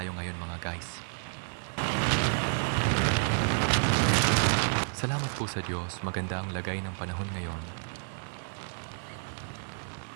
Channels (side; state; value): left; silent; 57 dB below the other